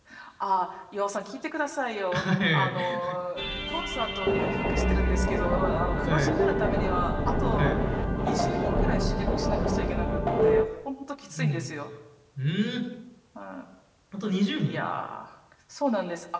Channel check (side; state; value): both; identical; correlation 1.00